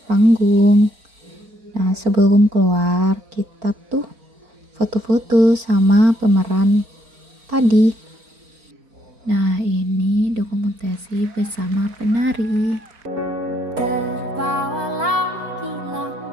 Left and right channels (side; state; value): left; late; 4.4 ms